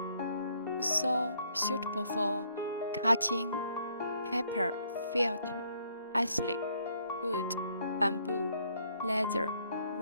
also suitable for cutting paper, felt, acrylic, wood, bamboo, leather,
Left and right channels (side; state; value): both; inverted; correlation -0.68